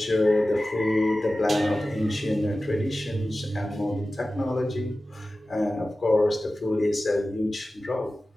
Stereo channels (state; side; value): normal; both; correlation 0.95